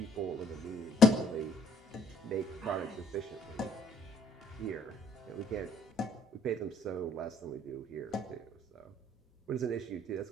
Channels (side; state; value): both; normal; correlation 0.63